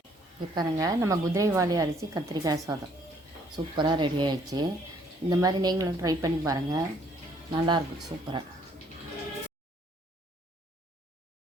இப்போ பாருங்கள், நம்ம குதிரைவாலி அரிசி கத்திரிக்காய் சாதம் சூப்பராக ரெடி ஆகிடுச்சு. இந்த மாதிரி நீங்களும் ட்ரை பண்ணி பாருங்கள், நல்லாயிருக்கும், சூப்பராக.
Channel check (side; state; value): both; normal; correlation 0.64